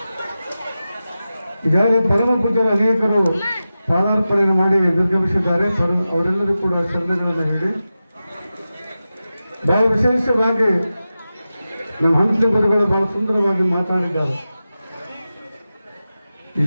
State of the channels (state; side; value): inverted; both; correlation -0.93